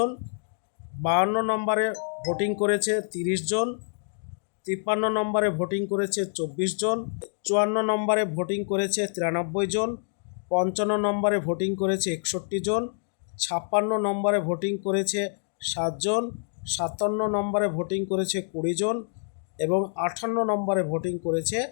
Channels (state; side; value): silent; right; digital silence